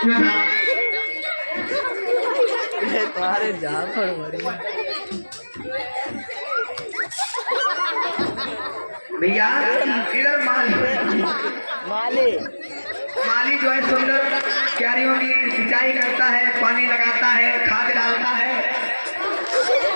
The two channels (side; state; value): both; inverted; correlation -1.00